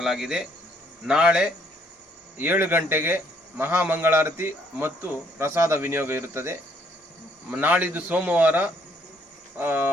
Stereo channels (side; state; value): both; normal; correlation 0.67